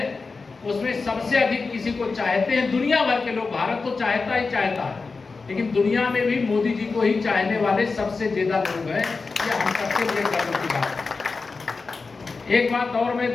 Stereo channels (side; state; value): right; quieter; 4.3 dB